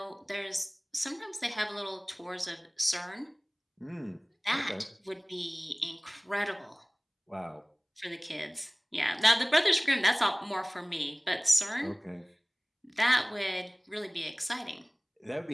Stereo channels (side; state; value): both; identical; correlation 1.00